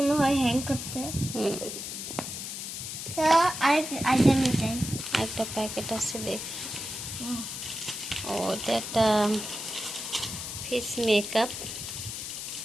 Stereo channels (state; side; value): noise; left; hiss, 7 dB below the sound